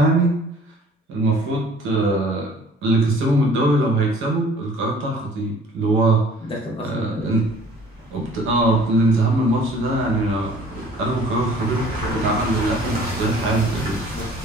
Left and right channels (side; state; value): both; normal; correlation 0.52